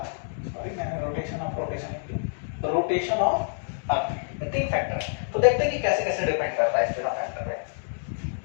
sorry मैंने रोटेशन ऑफ अर्थ, ये तीन फैक्टर है। तो देखते हैं कि कैसे कैसे डिपेंड करता है इस तीनों फैक्टर पे।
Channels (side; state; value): right; silent; digital silence